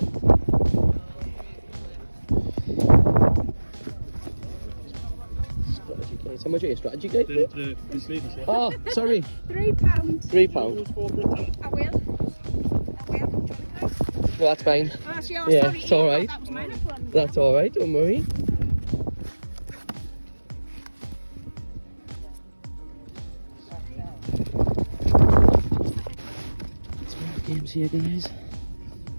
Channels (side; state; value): both; inverted; correlation -1.00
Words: Strategy guys, how much are your strategy guys? This lady's here. Oh, sorry. £3. £3. I will. Well, that's fine. Oh, that's yours. Yeah, Sorry, it's alright. that was mine. I put on the That's alright, don't worry. Games here guys. Is